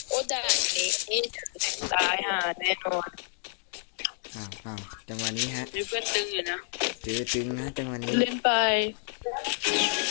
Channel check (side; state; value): right; silent; 59 dB below the other